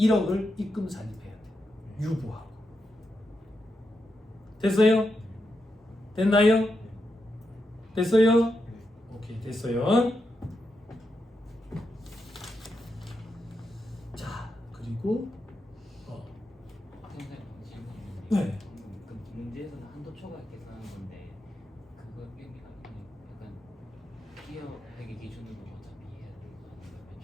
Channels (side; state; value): both; normal; correlation 0.86